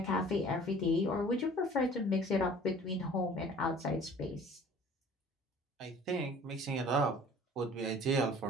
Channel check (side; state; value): both; normal; correlation 0.49